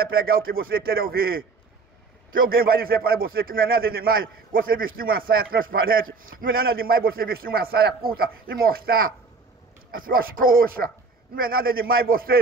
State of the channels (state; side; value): quieter; left; 4.2 dB